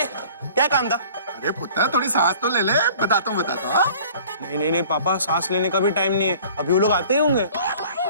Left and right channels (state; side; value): inverted; both; correlation -0.49